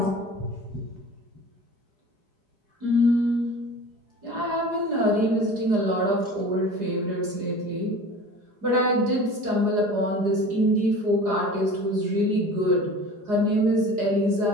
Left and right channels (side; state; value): left; late; 4.9 ms